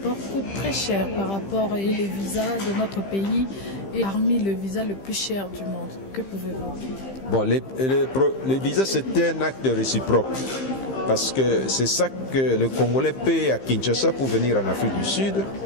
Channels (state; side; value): late; right; 15 ms